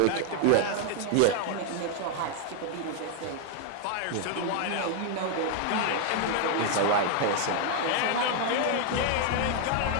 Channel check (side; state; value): both; different; correlation 0.00